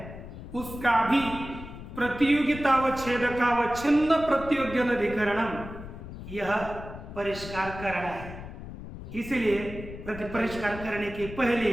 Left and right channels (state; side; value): noise; left; rumble, 12 dB below the sound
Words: उसका भी प्रतियोगितावच्छेदकावच्छिन्न प्रतियोग्यनधिकरणम यह परिष्कार करना है। इसलिए परिष्कार करने के पहले